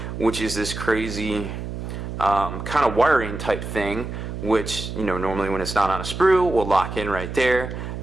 which is this crazy kind of wiring type thing, which, you know, normally when it's not on a sprue will lock in right there,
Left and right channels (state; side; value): noise; right; hum, 7 dB below the sound